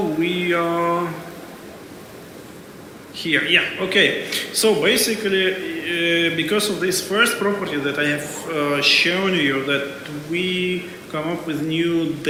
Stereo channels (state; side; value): identical; both; correlation 1.00